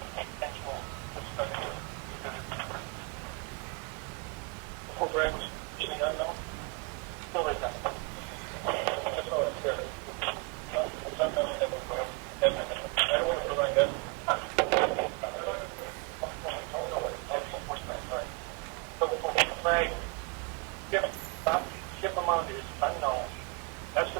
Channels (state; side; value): quieter; left; 30.1 dB